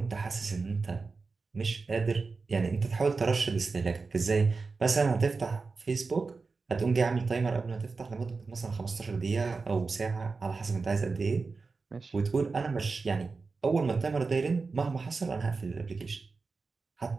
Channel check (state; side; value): quieter; left; 4.3 dB